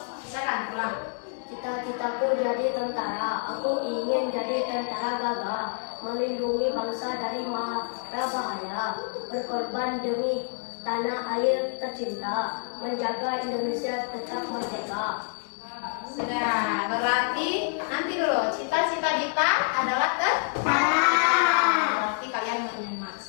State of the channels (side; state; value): right; silent; 58 dB below the other